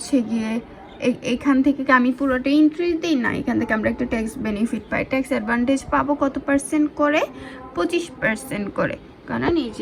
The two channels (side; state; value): both; identical; correlation 1.00